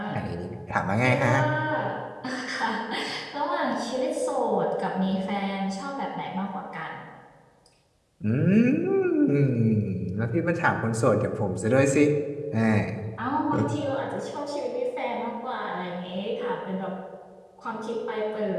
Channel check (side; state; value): both; identical; correlation 1.00